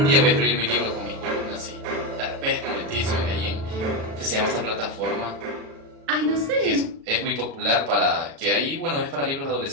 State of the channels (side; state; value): left; late; 36 ms